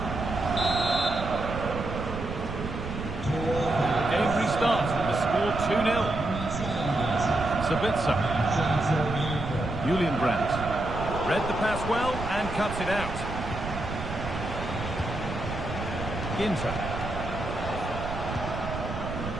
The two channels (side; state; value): right; noise; rumble, 7 dB below the sound